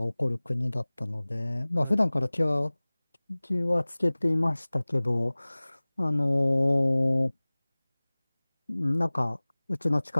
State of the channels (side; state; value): both; inverted; correlation -1.00